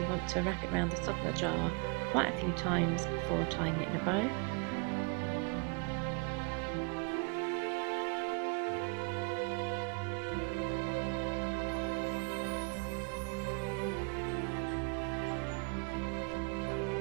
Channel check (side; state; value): left; quieter; 34.9 dB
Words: want to wrap it around the top of the jar quite a few times before tying it in a bow.